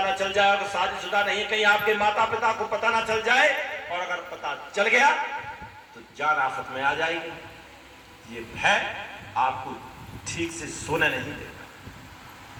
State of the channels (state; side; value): identical; both; correlation 1.00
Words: ना चल जाए, अगर शादीशुदा नहीं है कहीं आपके माता पिता को पता ना चल जाए, और अगर पता चल गया तो जान आफत में आ जाएगी। ये भय आपको ठीक से सोने नहीं देगा।